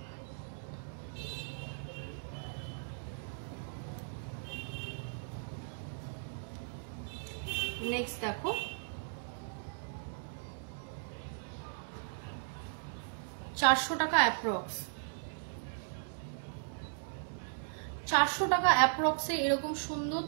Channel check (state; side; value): silent; left; digital silence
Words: নেক্সট দেখো, টাকা অ্যাপ্রক্স, 400 টাকা অ্যাপ্রক্সে এরকম সুন্দর